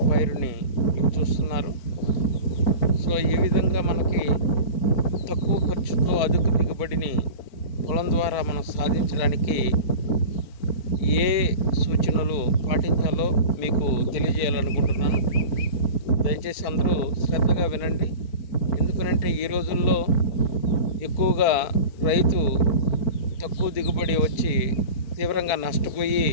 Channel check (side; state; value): right; late; 4.5 ms